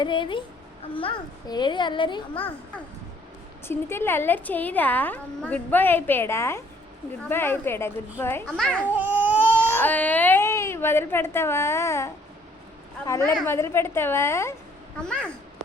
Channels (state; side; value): normal; both; correlation 0.62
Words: ఏది అల్లరి? చిన్ని తెల్లి అల్లరి చేయదా? గుడ్ బాయ్ అయిపోయాడా? గుడ్ బాయ్ అయిపోయాడా? గుడ్ బాయ్ మొదలు పెడతావా? అల్లరి మొదలు పెడతావా?